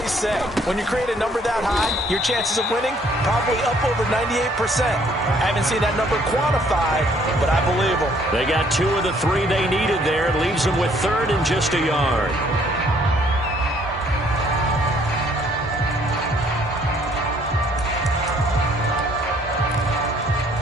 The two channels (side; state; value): both; normal; correlation 0.63